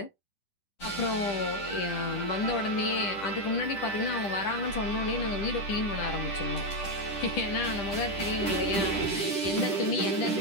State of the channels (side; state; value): right; late; 10 ms